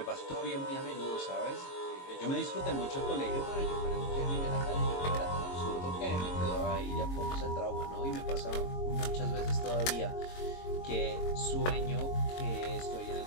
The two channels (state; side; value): late; right; 22 ms